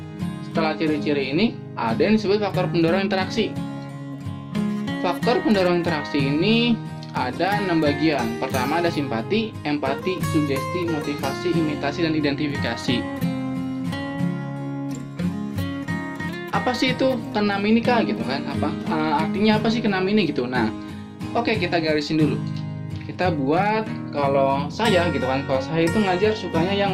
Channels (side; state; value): both; identical; correlation 1.00